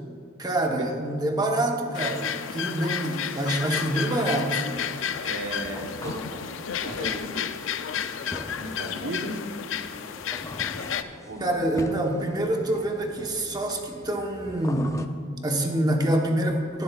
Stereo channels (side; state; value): both; normal; correlation 0.52